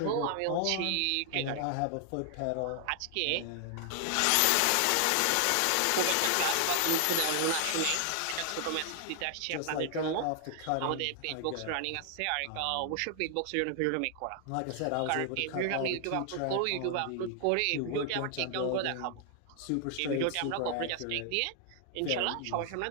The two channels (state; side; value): different; both; correlation 0.00